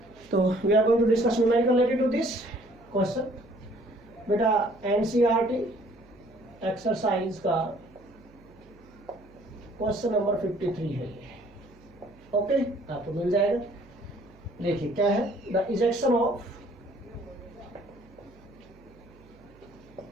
तो we are going to discuss numerical related to this question. बेटा एनसीईआरटी एक्सरसाइज का क्वेश्चन नंबर 53 है ये। ओके, आपको मिल जाएगा। देखिए क्या है, the ejection of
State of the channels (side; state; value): right; noise; hum, 25 dB below the sound